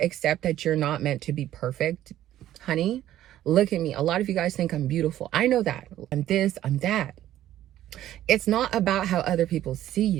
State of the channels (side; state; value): left; quieter; 12.8 dB